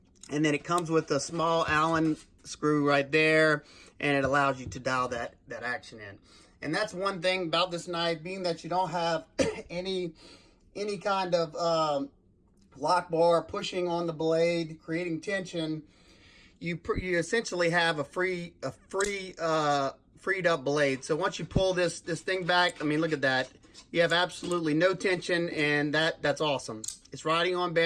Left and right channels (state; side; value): identical; both; correlation 1.00